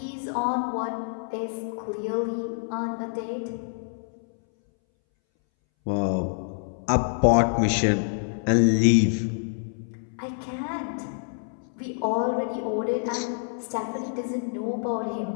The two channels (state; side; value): silent; right; 60 dB below the other